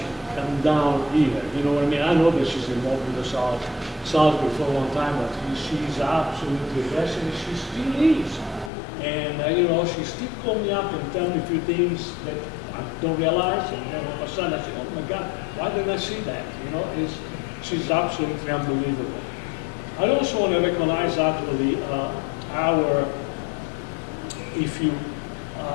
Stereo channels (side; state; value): right; drops out; at 8.7 s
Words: come down here. You know what I mean? I know that she's involved with the Salisbury for a long time, but she's absolutely a blessing. She still is. And, you know, she still call me up and tell me a few things that I don't realize. And then all of a sudden I say, oh my God, why didn't I see that? You know, she's absolutely unbelievable. I also want to recognize actually